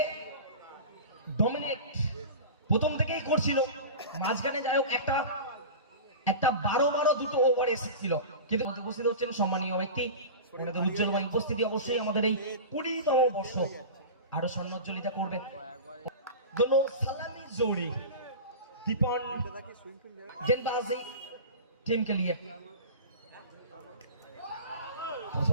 ডমিনেট প্রথম থেকেই করছিল, মাঝখানে যাই হোক একটা 12 দুটো ওভার এসেছিল, কিন্তু উপস্থিত হচ্ছেন সম্মানীয় ব্যক্তি, ওনাদের উজ্জ্বল ভাই উপস্থিতি অবশ্যই আমাদের এই 20তম বর্ষ আরো স্বর্ণোজ্জ্বলিতা করবে। दोनों सलामी जोड़ी दीपन गेंदबाजी टीम के लिए।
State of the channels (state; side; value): inverted; both; correlation -0.31